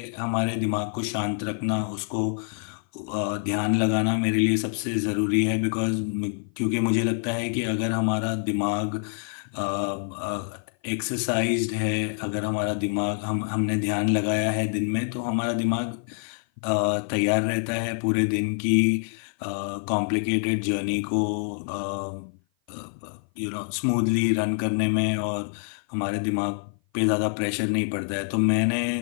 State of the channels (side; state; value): right; silent; 55 dB below the other